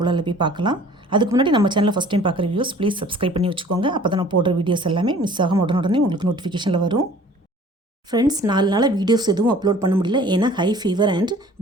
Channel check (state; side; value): normal; both; correlation 0.50